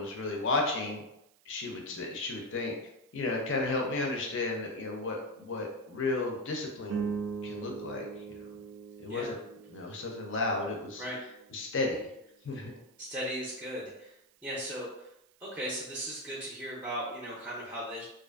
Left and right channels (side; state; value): right; noise; hiss, 30 dB below the sound